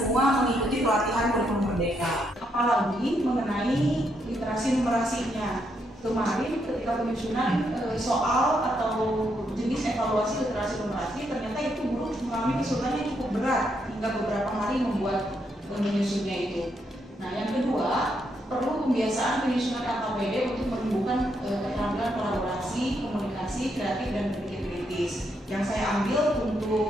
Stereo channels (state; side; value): normal; both; correlation 0.77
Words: mengikuti pelatihan kurikulum merdeka. Apalagi mengenai literasi numerasinya. Kemarin ketika penyusunan soal atau jenis evaluasi literasi numerasi, ternyata itu guru mengalami kesulitan yang cukup berat hingga beberapa hari membuat menyusunnya itu. Nah, yang kedua, perlu pembiasaan penyusunan KKPD untuk menumbuhkan keterampilan kolaborasi, komunikasi, kreatif, dan berpikir kritis. Yang saya ambil